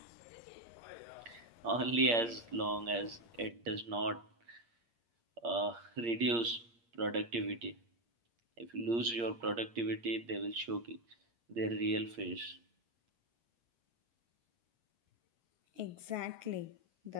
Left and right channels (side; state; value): left; late; 8.6 ms